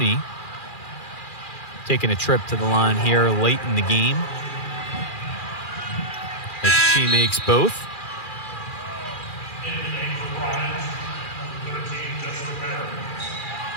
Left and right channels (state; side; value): late; right; 2.4 ms